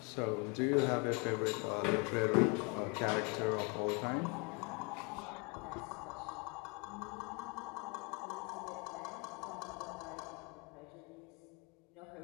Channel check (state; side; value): quieter; right; 30.9 dB